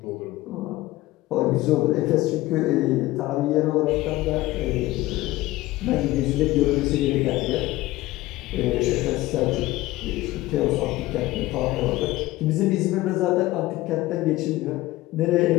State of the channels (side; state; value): right; quieter; 17.9 dB